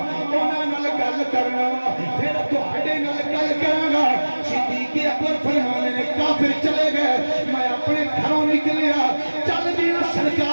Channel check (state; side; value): inverted; both; correlation -1.00